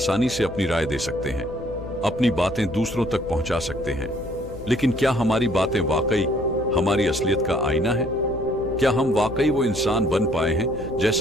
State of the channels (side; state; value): left; noise; hum, 14 dB below the sound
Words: से अपनी राय दे सकते हैं, अपनी बातें दूसरों तक पहुंचा सकते हैं, लेकिन क्या हमारी बातें वाकई हमारी असलियत का आईना है? क्या हम वाकई वो इंसान बन पाए हैं